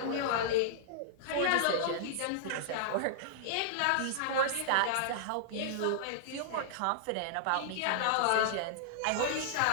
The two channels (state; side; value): different; both; correlation -0.02